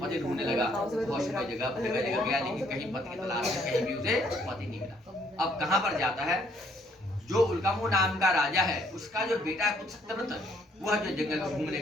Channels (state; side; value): normal; both; correlation 0.66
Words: ढूंढने लगा, बहुत समय जगह गया, लेकिन कहीं पति की तलाश में कहीं भी उसे पति नहीं मिला। अब कहाँ पर जाता है, जो उल्कामू नाम का राजा है उसका जो बेटा है सत्यव्रत, वह जो जंगल